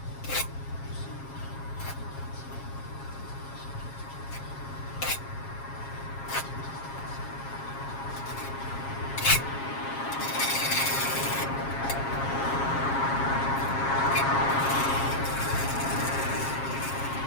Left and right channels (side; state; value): right; late; 7.4 ms